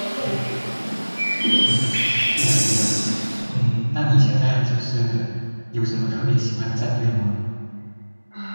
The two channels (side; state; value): both; inverted; correlation -1.00